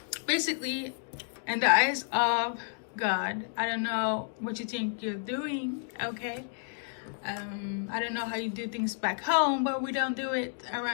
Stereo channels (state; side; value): silent; right; digital silence